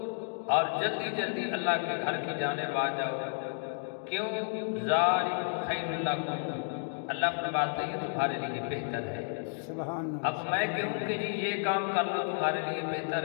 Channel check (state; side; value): silent; right; digital silence